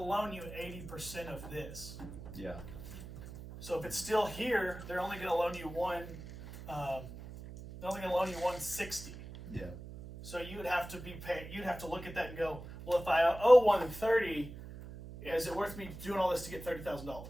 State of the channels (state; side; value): noise; right; hum, 12 dB below the sound